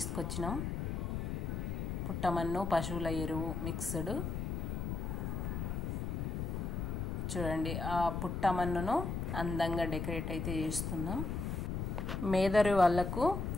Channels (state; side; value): noise; left; rumble, 2 dB below the sound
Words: పుట్టమన్ను పశువుల ఎరువు మిక్స్డ్. చూడండి, ఆ పుట్టమన్నును అందంగా డెకరేట్ అయితే చేస్తున్నాం. మేదరి వాళ్ళకు